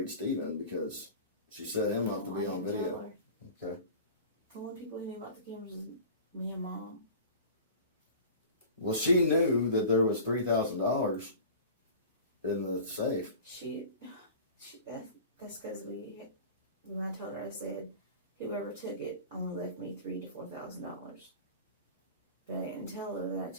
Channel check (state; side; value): inverted; both; correlation -0.38